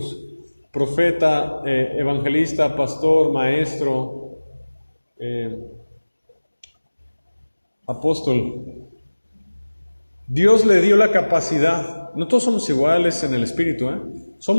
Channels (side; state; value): both; inverted; correlation -1.00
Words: profeta, evangelista, pastor, maestro, apóstol, Dios le dio la capacidad. No todos somos iguales en el espíritu,